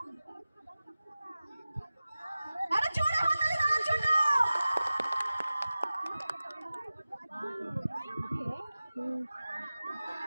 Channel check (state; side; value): inverted; both; correlation -0.96